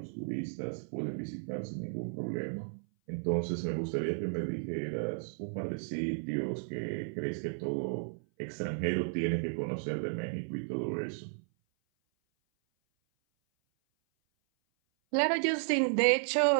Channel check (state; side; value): silent; left; 55 dB below the other